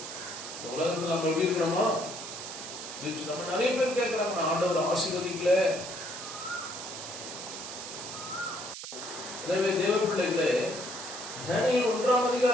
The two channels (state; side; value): noise; right; hiss, 9 dB below the sound